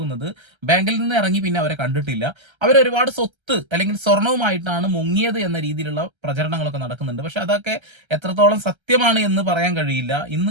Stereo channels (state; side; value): late; left; 1.3 ms